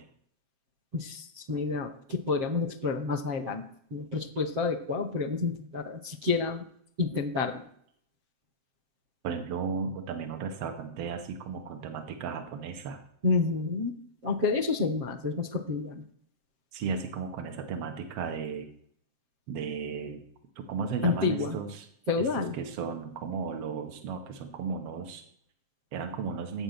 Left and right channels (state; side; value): late; left; 7.6 ms